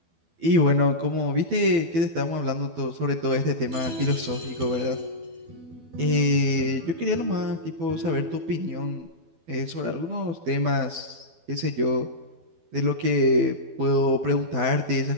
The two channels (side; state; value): left; late; 12 ms